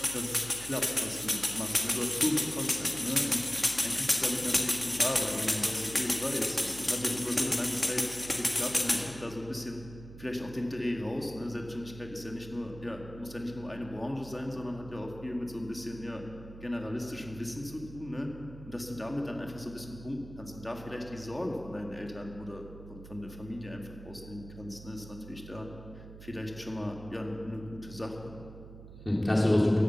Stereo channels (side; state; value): right; noise; hum, 15 dB below the sound